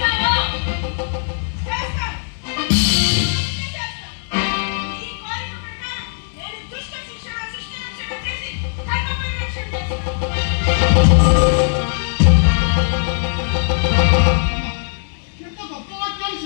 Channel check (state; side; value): silent; right; digital silence